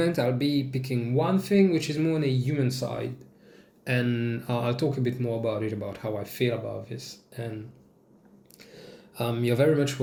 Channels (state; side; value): identical; both; correlation 1.00